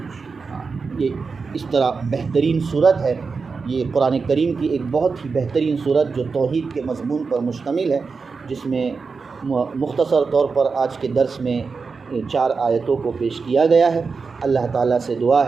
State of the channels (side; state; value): left; quieter; 4.8 dB